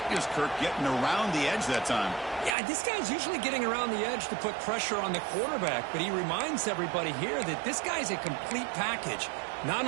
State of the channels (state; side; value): drops out; left; at 2.6 s